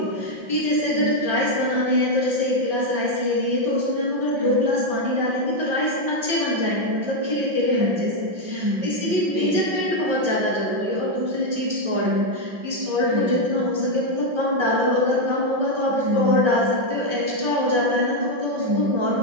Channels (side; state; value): left; late; 5.1 ms